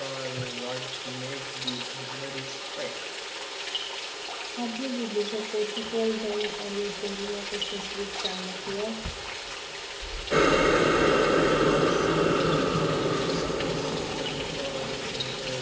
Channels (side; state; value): both; identical; correlation 1.00